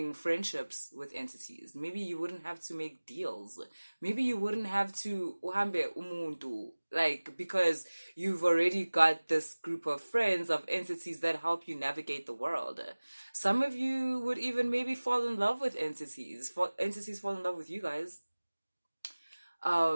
friendships with entities. Maybe you wouldn't have to make deals. Maybe you wouldn't have to uhambe umuntu, because you've already got this group of friends, of entities that help you navigate the world. Some of you would even maybe fall in love with entities. Entities fall in love with you guys.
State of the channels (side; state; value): both; inverted; correlation -1.00